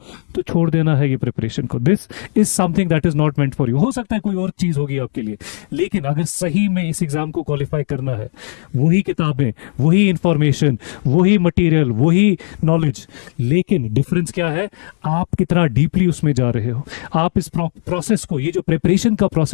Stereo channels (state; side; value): silent; right; digital silence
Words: तो छोड़ देना है ये प्रिपरेशन को। This is something that is not meant for you. हो सकता है कोई और चीज होगी आपके लिए, लेकिन अगर सही में इस एग्जाम को क्वालिफाई करना है, वही किताबें, वही इंफॉर्मेशन, वही मटेरियल, वही नॉलेज, लेकिन डिफरेंस क्या है? आप कितना डीपली उसमें जा रहे हो। आप इस प्रोसेस को, ये जो प्रिपरेशन का